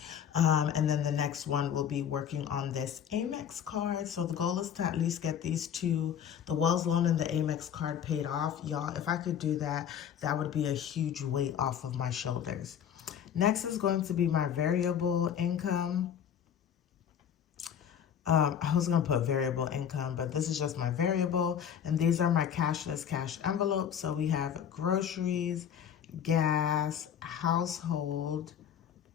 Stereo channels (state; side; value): quieter; right; 8.7 dB